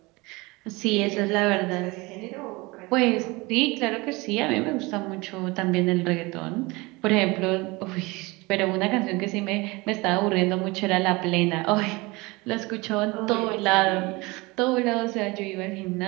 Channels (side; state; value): left; quieter; 23.9 dB